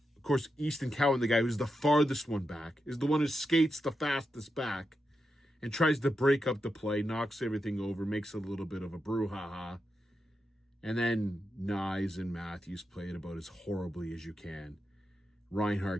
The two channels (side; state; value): both; normal; correlation 0.87